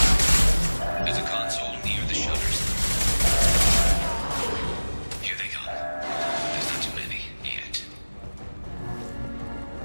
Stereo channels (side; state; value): both; inverted; correlation -1.00